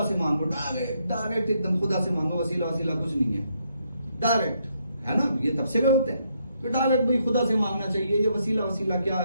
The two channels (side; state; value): both; inverted; correlation -0.75